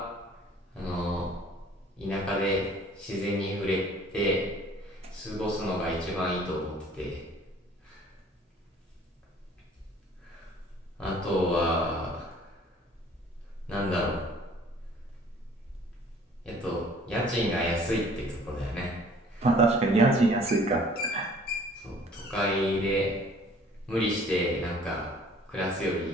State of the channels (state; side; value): normal; both; correlation 0.53